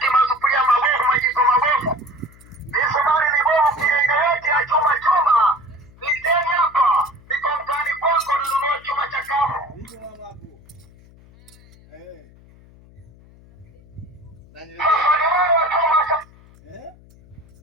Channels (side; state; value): left; noise; hum, 25 dB below the sound